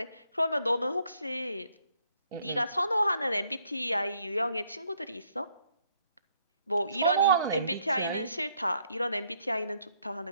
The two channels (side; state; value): both; inverted; correlation -0.71